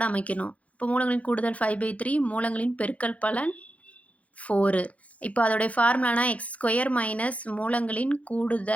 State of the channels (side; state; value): right; late; 0.066 ms